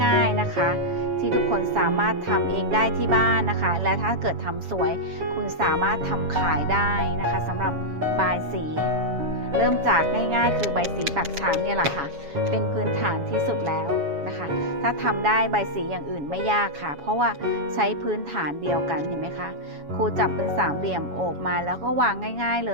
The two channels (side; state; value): left; late; 7.2 ms